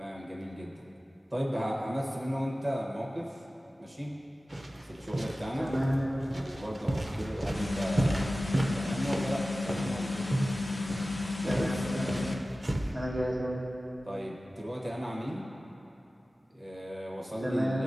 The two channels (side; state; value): both; normal; correlation 0.96